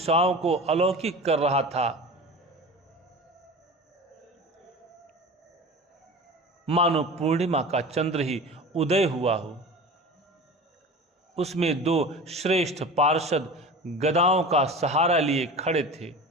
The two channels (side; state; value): both; normal; correlation 0.34